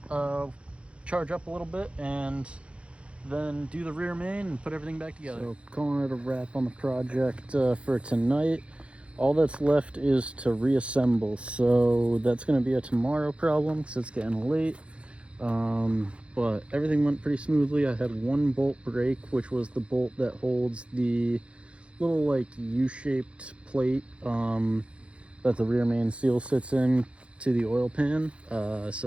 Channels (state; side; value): late; left; 0.060 ms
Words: charge up a little bit, and then do the rear main and put everything back together. So calling it a wrap on the project for tonight. All that's left is to reassemble, so that's going to be a tomorrow problem because it's getting late. But everything went pretty smoothly. I had one bolt break, which was the bolt that holds the little like U-shaped plate that the rear main seal sits in to the oil pan.